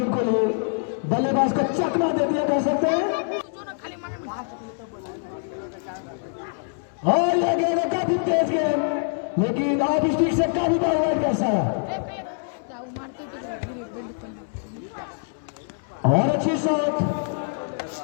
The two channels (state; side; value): silent; right; digital silence